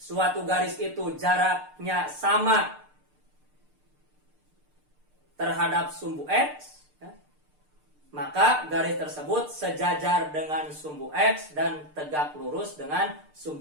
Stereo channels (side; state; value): left; late; 6.7 ms